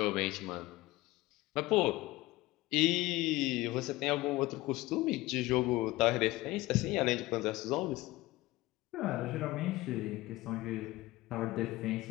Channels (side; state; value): right; quieter; 19.0 dB